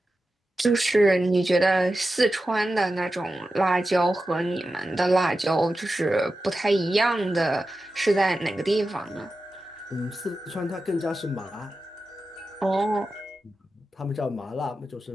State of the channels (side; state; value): both; normal; correlation 0.92